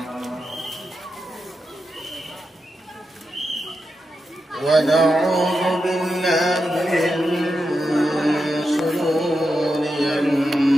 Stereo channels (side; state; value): both; normal; correlation 0.88